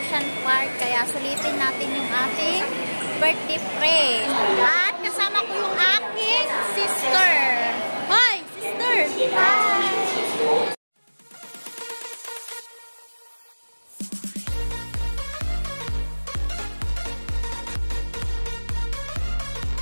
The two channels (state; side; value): inverted; both; correlation -1.00